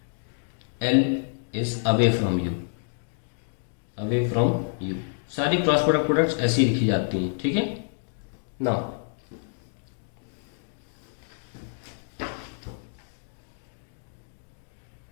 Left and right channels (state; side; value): silent; right; digital silence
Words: L is away from you। सारी क्रॉस प्रोडक्ट्स ऐसी लिखी जाती हैं। ठीक है, now